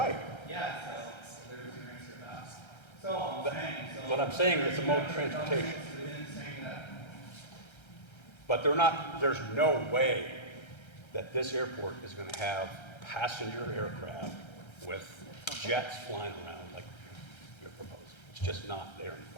Yeah, so there's your answer to that. So I'm saying, so. But I'm saying it's a mode of transportation. Within saying that. But there's no way that this airport is going to have passenger aircraft with jets flying around like you're proposing. It's just not there in the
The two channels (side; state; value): right; late; 1.3 ms